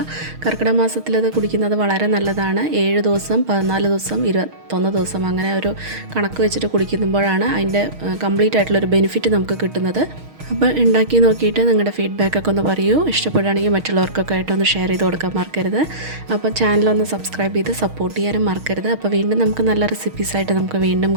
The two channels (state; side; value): late; left; 6.4 ms